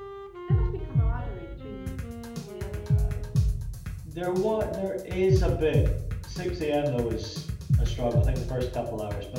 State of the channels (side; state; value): both; identical; correlation 1.00